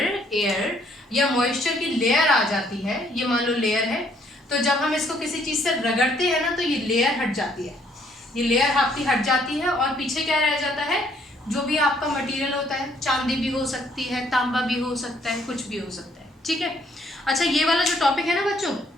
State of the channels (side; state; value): both; normal; correlation 0.66